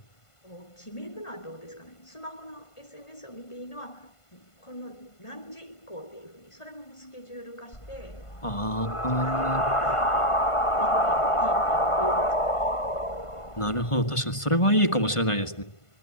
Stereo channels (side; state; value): right; late; 1.5 ms